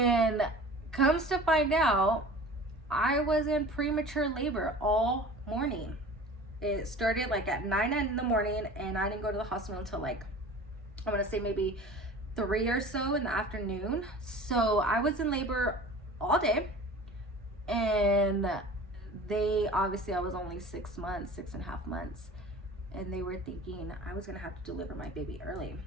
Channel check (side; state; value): both; normal; correlation 0.40